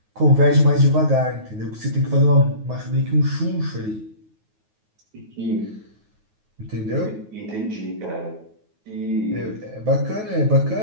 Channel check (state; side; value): late; left; 9.4 ms